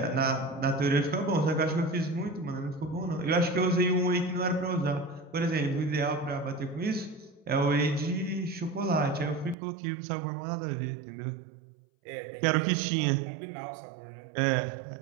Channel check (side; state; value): left; drops out; at 9.6 s